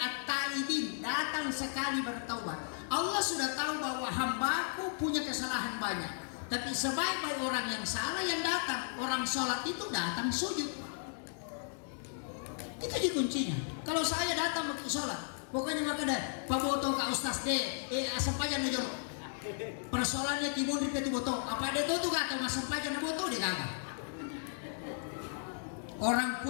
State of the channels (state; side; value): silent; right; digital silence